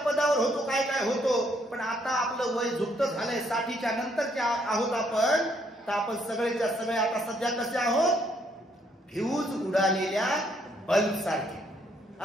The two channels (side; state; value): both; normal; correlation 0.70